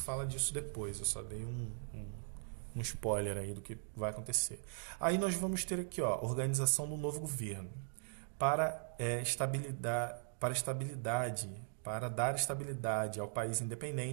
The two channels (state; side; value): silent; left; digital silence